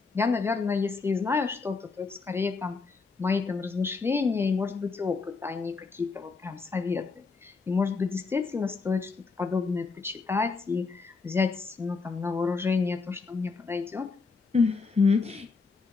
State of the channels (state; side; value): quieter; right; 4.5 dB